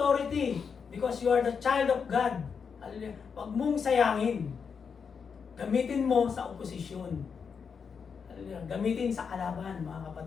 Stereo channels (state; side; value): quieter; right; 6.2 dB